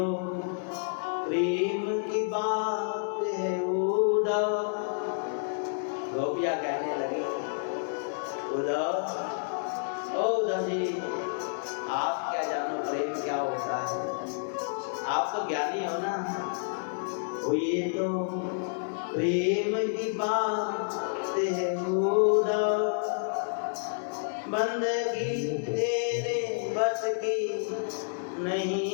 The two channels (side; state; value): right; silent; 58 dB below the other